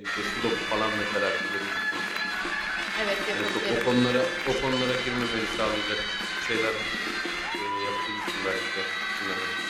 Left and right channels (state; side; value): identical; both; correlation 1.00